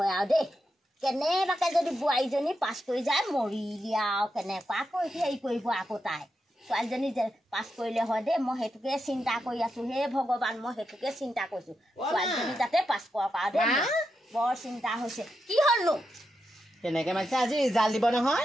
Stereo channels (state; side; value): normal; both; correlation 0.86